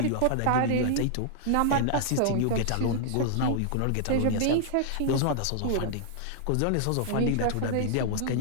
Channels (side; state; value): both; different; correlation -0.01